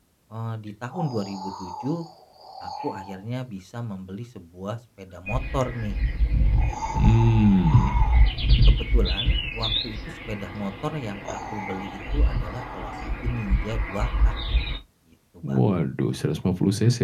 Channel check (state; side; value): identical; both; correlation 1.00